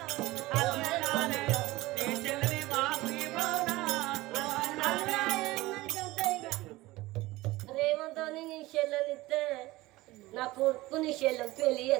రేవంతోని నీ చెల్లెనిస్తే నా కొడుకు నీ చెల్లెని పెళ్లి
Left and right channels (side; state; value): left; quieter; 19.2 dB